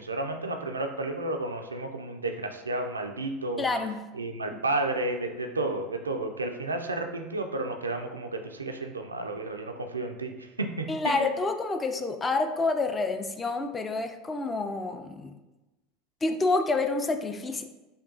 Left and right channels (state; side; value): normal; both; correlation 0.23